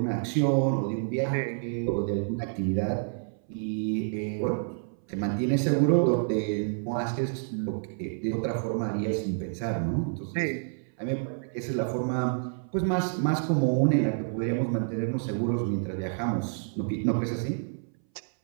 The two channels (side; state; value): left; silent; 59 dB below the other